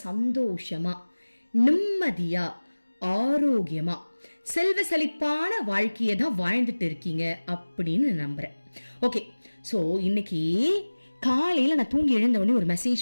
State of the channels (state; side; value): inverted; both; correlation -1.00